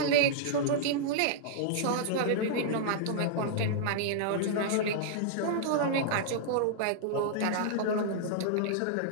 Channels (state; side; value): different; both; correlation -0.01